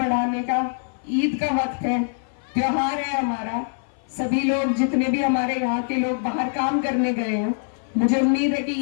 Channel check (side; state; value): right; silent; 56 dB below the other